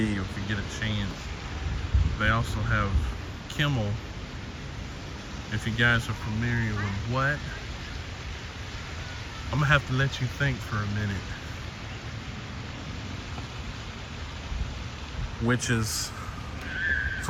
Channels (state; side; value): identical; both; correlation 1.00